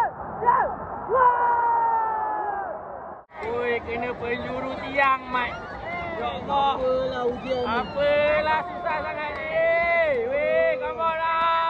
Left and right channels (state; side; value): identical; both; correlation 1.00